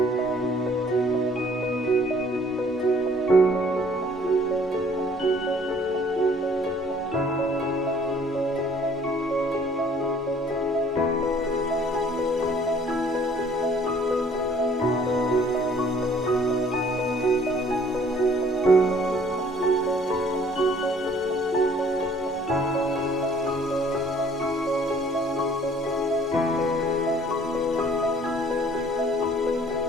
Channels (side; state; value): both; normal; correlation 0.57